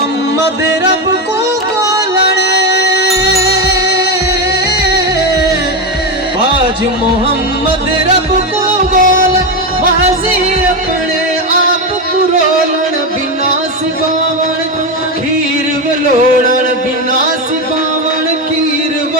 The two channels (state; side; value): normal; both; correlation 0.12